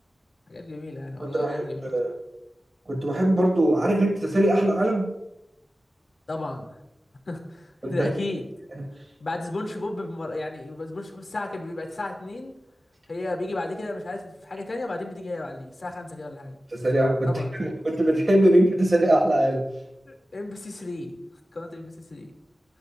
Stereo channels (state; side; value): normal; both; correlation 0.94